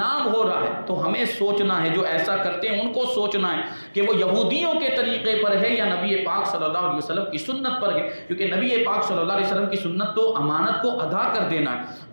ہو رہا ہے۔ تو ہمیں سوچنا ہے، جو ایسا کرتے ہیں ان کو سوچنا ہے کہ وہ یہودیوں کے طریقے پر ہے یا نبی پاک صلی اللہ علیہ وسلم کی سنت پر ہے، کیونکہ نبی پاک صلی اللہ علیہ وسلم کی سنت تو امانت کو ادا کر دینا ہے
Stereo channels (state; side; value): inverted; both; correlation -1.00